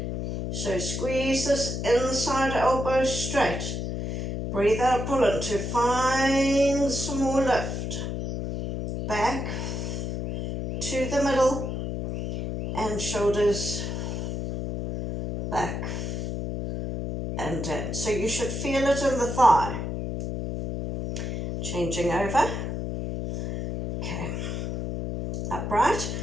So squeeze this inside elbow straight. Breathe out, pull in to find some more lift. Back to the middle and shoulders back and down. So you should feel it in the thigh. Changing over. Okay. Upright.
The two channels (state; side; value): noise; left; hum, 3 dB below the sound